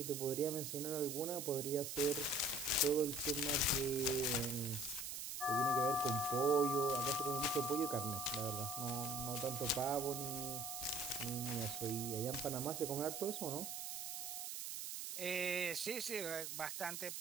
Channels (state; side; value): noise; right; hiss, 5 dB below the sound